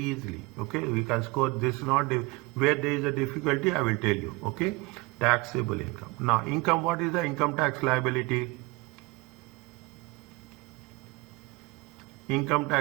Okay. We can score this not where there is a difficulty. I will tell you. Okay. Taxable income. Now, income. What is the income tax liability? Income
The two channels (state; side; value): quieter; left; 23.6 dB